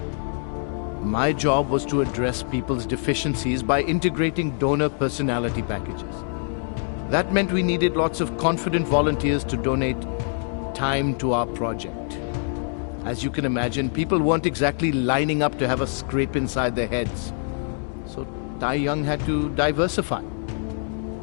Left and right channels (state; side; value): silent; right; 62 dB below the other